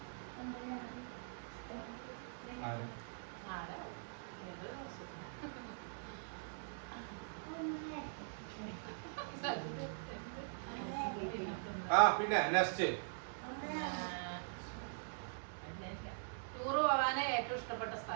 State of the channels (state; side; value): silent; left; digital silence